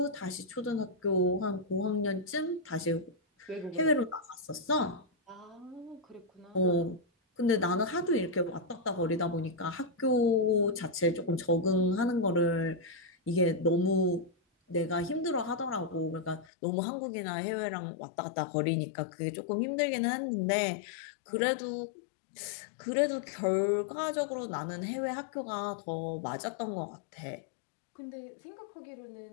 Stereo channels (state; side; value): drops out; right; at 16.4 s